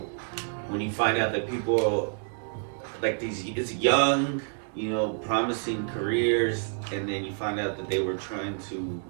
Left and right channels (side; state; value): left; silent; 59 dB below the other